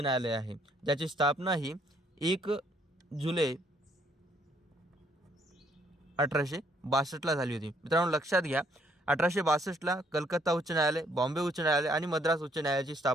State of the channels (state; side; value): normal; both; correlation 0.67